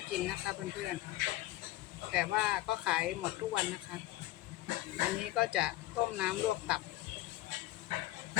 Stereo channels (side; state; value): right; quieter; 16.2 dB